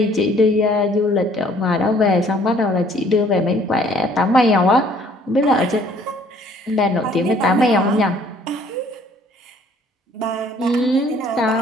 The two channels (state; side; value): normal; both; correlation 0.59